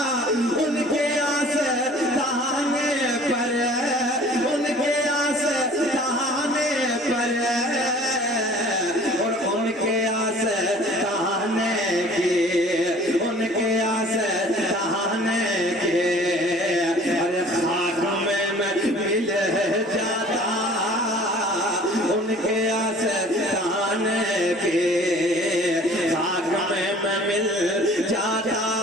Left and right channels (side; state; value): both; normal; correlation 0.49